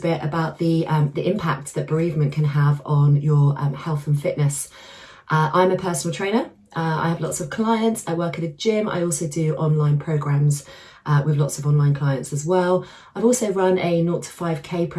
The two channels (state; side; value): identical; both; correlation 1.00